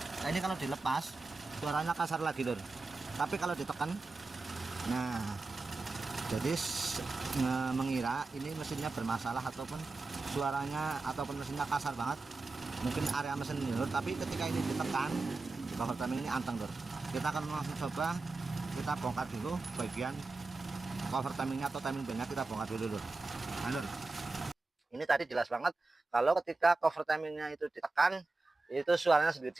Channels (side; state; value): left; quieter; 3.5 dB